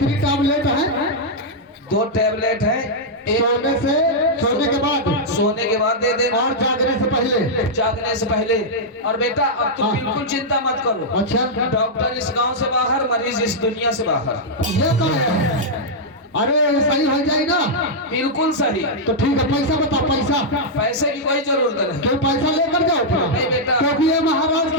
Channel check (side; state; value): both; normal; correlation -0.06